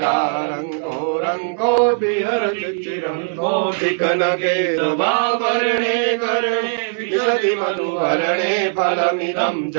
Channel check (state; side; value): silent; left; 66 dB below the other